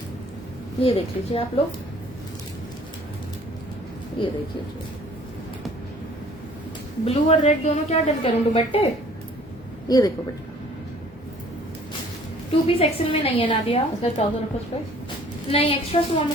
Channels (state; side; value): normal; both; correlation 0.54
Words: ये देख लीजिए आप लोग, ये देखिए ब्लू और रेड दोनों क्या डन करूं, दुपट्टे? ये देखो बेटा, 2 पीस एक्सेल में नहीं है नादिया, इसका ट्राउजर रखो इस पर। नहीं एक्स्ट्रा स्मॉल